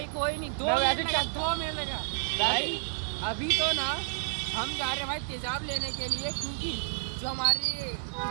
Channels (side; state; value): left; silent; digital silence